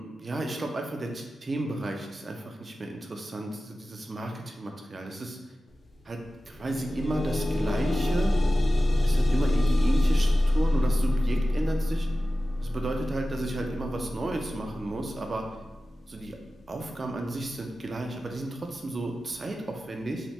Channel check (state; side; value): normal; both; correlation 0.94